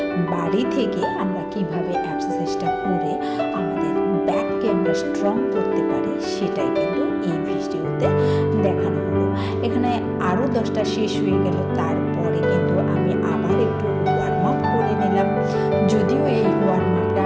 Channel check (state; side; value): identical; both; correlation 1.00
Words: বাড়ি থেকে আমরা কিভাবে এক্সারসাইজটা করে আমাদের ব্যাককে আমরা স্ট্রং করতে পারি সেটাই কিন্তু এই ভিডিওতে দেখানো হলো। এখানে আরও 10টা শেষ হয়ে গেল। তারপরে কিন্তু আমি আবার একটু ওয়ার্ম আপ করে নিলাম। যদিও এই ওয়ার্ম আপটা